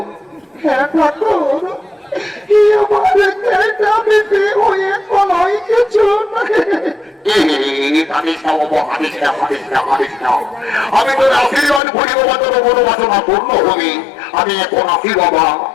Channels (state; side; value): drops out; right; at 11.8 s